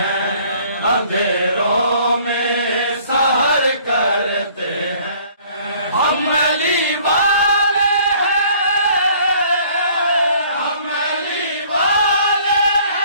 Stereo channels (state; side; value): inverted; both; correlation -0.56